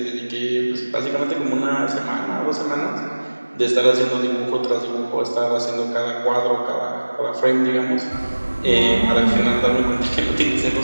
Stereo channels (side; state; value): both; inverted; correlation -1.00